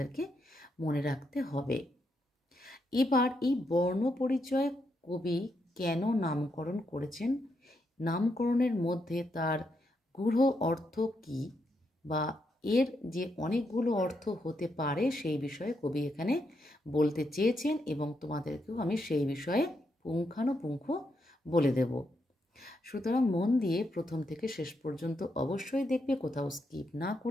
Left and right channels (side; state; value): both; normal; correlation 0.81